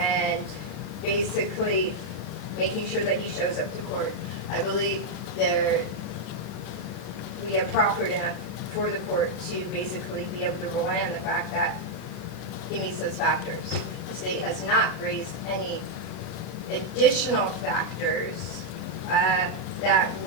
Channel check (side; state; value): right; noise; hiss, 26 dB below the sound